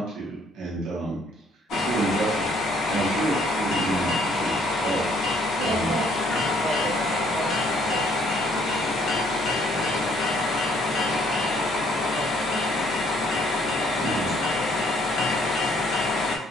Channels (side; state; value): both; normal; correlation 0.64